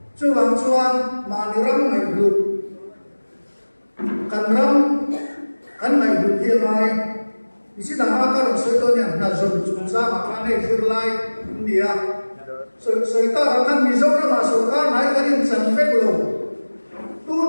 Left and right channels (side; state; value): both; inverted; correlation -1.00